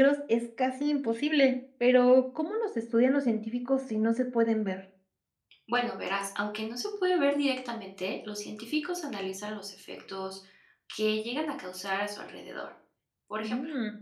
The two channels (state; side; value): identical; both; correlation 1.00